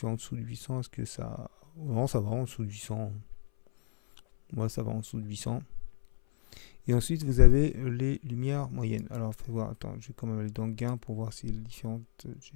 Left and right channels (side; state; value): right; silent; 57 dB below the other